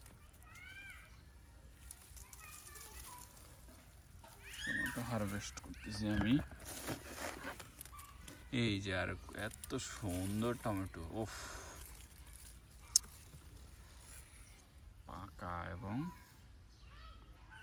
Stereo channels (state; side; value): identical; both; correlation 1.00